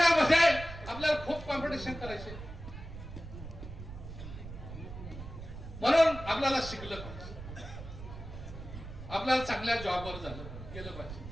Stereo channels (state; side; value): noise; right; rumble, 11 dB below the sound